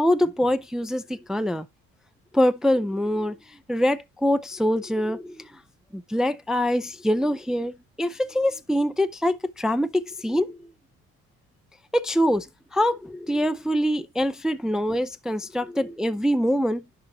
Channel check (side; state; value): both; normal; correlation 0.93